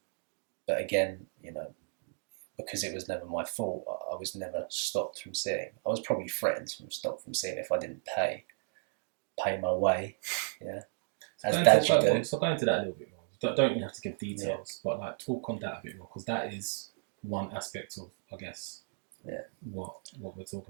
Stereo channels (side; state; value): left; silent; digital silence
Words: again, because it was never my fault, I was never stopped from seeing. I was probably threatened stopped from seeing if I didn't pay my way. Yeah. So go into that a little bit more. Don't you have to give details, but like talk on that a bit more, because that is one aspect of, I guess, what we're